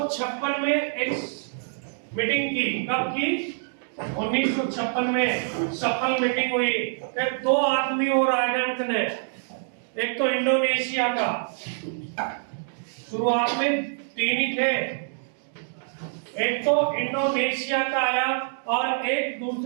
में एक मीटिंग की। कब की? 1956 में सफल मीटिंग हुई। फिर 2 आदमी और आए ने, एक तो इंडोनेशिया का, शुरुआत में 3 ही थे, एक तो इंडोनेशिया का आया और एक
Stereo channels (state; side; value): silent; left; digital silence